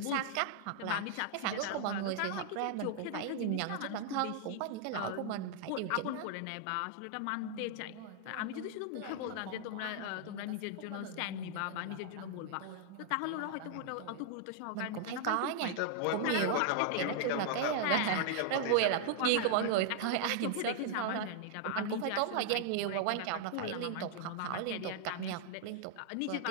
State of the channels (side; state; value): both; different; correlation 0.00